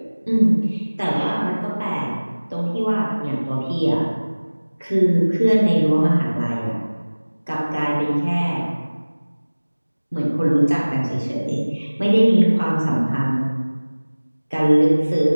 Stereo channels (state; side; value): inverted; both; correlation -1.00